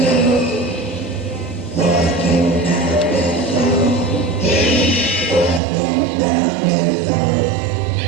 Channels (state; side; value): drops out; left; at 5.6 s